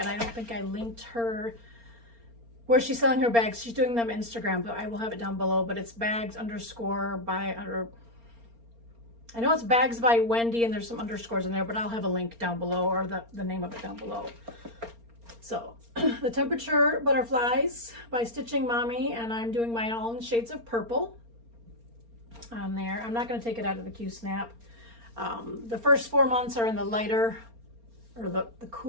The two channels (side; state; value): left; late; 4.3 ms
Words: I don't think I linked her where she's selling her bags. She's doing them Instagram, but I will have it down below. But it's bags underscore by under. I know it's bags by Wendy, and there's some underscores in there, but I'll have a link down below, or the name of it down below. So the temperature butterflies by Stitchin Mommy, and I'm doing mine all in shades of purple on there. I'm not going to take it out of the Q-snap. The first 4 months are in the lighter or the